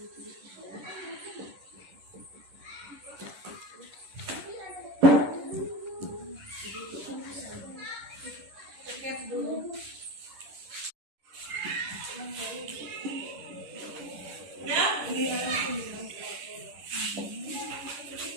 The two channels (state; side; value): late; left; 11 ms